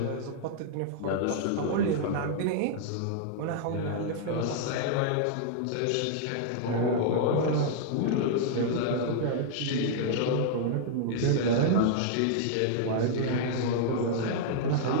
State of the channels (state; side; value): different; both; correlation -0.01